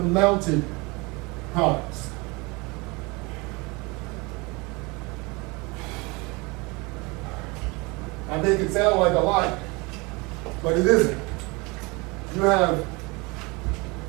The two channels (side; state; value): left; quieter; 26.3 dB